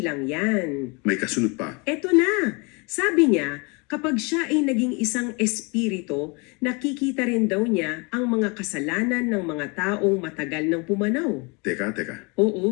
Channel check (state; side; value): quieter; right; 30.1 dB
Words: yan. May kasunod pa. Eto na, sabi niya, Kapag siya ay naging isang espiritu, nakikita rin daw niya ang mga kasalanan ng mga taong matagal nang pumanaw. Teka.